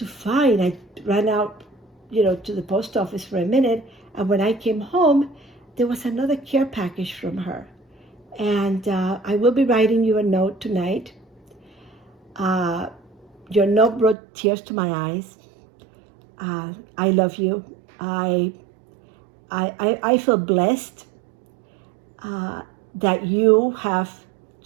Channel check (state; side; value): drops out; left; at 14.2 s